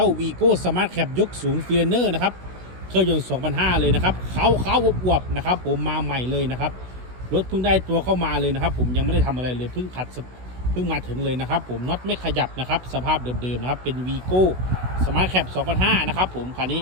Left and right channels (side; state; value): left; late; 16 ms